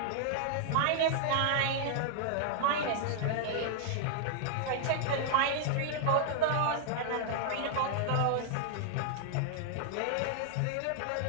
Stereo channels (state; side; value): different; both; correlation -0.01